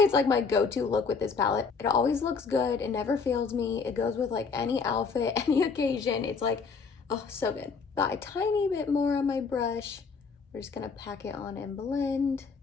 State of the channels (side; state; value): right; quieter; 5.1 dB